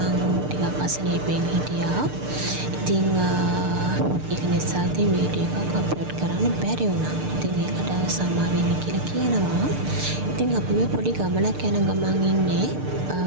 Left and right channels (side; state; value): left; late; 6.7 ms